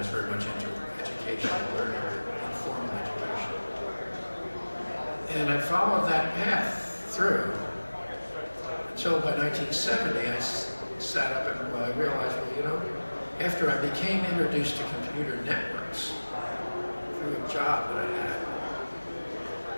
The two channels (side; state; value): both; inverted; correlation -1.00